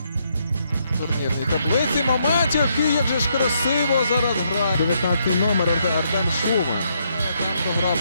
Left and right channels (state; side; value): inverted; both; correlation -0.75